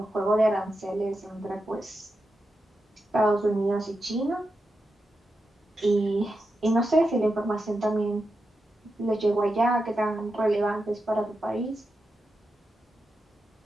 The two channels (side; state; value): both; normal; correlation 0.88